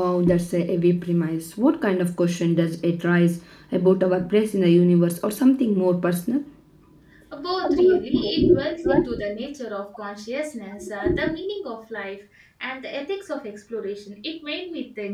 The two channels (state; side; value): identical; both; correlation 1.00